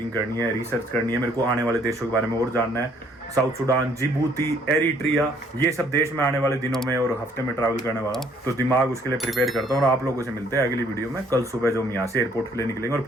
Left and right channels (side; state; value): both; normal; correlation 0.63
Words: करनी है, रिसर्च करनी है, मेरे को आने वाले देशों के बारे में और जानना है। साउथ सुडान, जिबूती, एरिट्रिया, ये सब देश में आने वाले दिनों में और हफ्ते में ट्रैवल करने वाला हूँ, तो दिमाग उसके लिए प्रिपेयर करता हूँ। और आप लोगों से मिलते हैं अगली वीडियो में कल सुबह, जो हम यहाँ से एयरपोर्ट के लिए निकलेंगे और